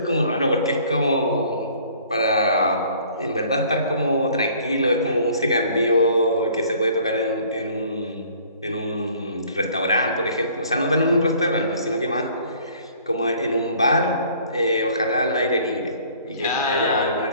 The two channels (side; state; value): both; inverted; correlation -0.55